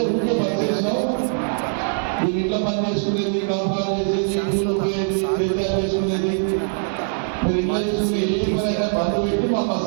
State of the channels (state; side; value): silent; left; 64 dB below the other